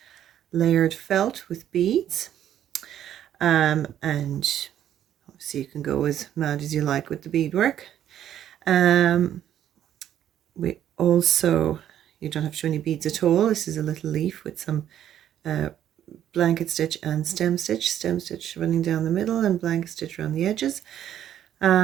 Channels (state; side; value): quieter; left; 10.8 dB